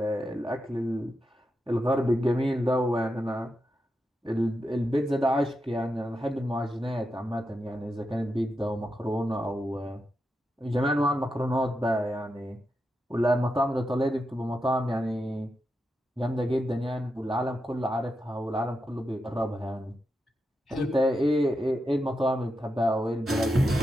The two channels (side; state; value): both; normal; correlation 0.87